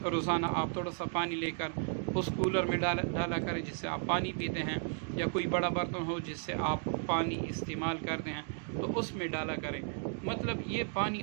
روزانہ آپ تھوڑا سا پانی لے کر اس کولر میں ڈالا کریں جس سے آپ پانی پیتے ہیں، یا کوئی بڑا برتن ہو جس سے آپ پانی استعمال کرتے ہیں تو اس میں ڈالا کریں، مطلب یہ پانی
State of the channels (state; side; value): silent; left; 55 dB below the other